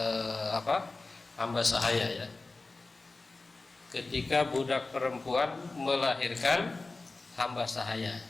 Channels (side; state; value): right; quieter; 3.4 dB